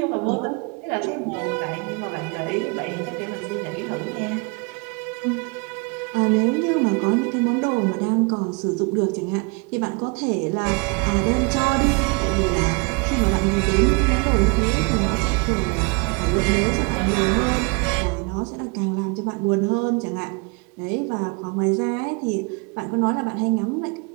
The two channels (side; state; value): left; quieter; 31.3 dB